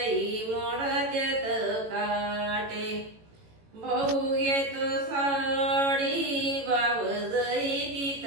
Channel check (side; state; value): left; late; 18 ms